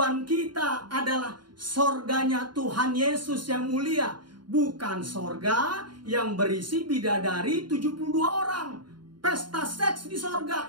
kita adalah sorganya Tuhan Yesus yang mulia. Bukan sorga yang berisi bidadari 72 orang. Pesta seks di sorga,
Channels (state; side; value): late; left; 0.71 ms